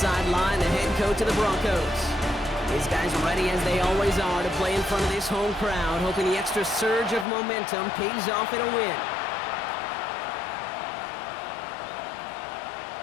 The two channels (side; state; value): right; drops out; at 7.2 s